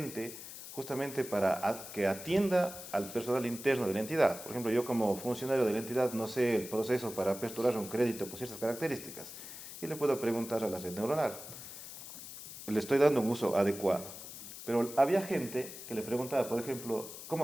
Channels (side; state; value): left; noise; hiss, 12 dB below the sound